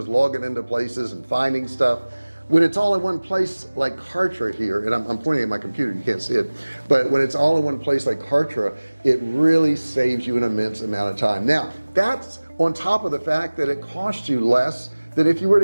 logging into places and finding stuff. When it's all in one place like Kartra here, and I'm pointing at my computer, you can't see it, but when it's all in one place like Kartra, it really saves you an immense amount of time. Now that's on top of the fact that it costs you less than if you were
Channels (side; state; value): both; inverted; correlation -1.00